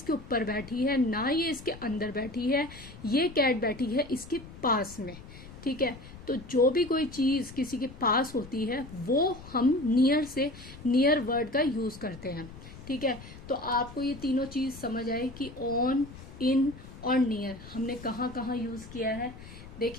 ऊपर बैठी है ना ये इसके अंदर बैठी है, ये कैट बैठी है इसके पास में। ठीक है, तो जो भी कोई चीज किसी के पास होती है वो हम नियर वर्ड का यूज करते हैं। ठीक है, तो आपको ये तीनों चीज समझ आए कि ऑन, इन और नियर हमने कहाँ कहाँ यूज किया है।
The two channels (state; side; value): noise; left; rumble, 16 dB below the sound